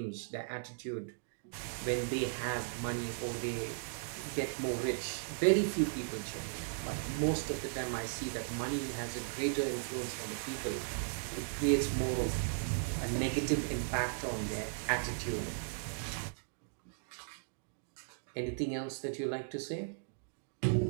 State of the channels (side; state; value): left; silent; digital silence